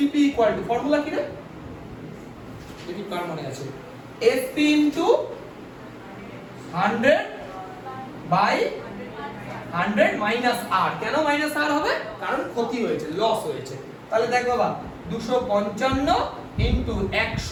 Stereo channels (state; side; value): identical; both; correlation 1.00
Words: ইকুয়াল টু, ফর্মুলা কি রে? দেখি কার মনে আছে, এসপি ইনটু 100 বাই 100 মাইনাস আর। কেন মাইনাস আর হবে? কারণ ক্ষতি হয়েছে, লস হয়েছে। তাহলে দেখ বাবা, 255 ইনটু